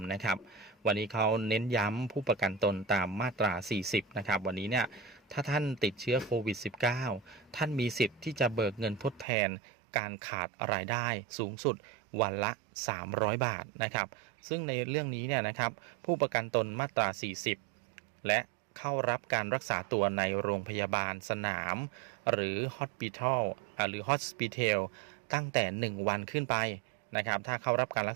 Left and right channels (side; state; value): left; drops out; at 9.2 s